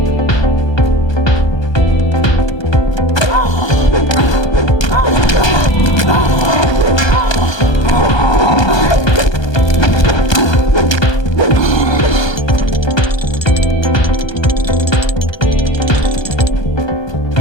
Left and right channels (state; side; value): late; right; 1.2 ms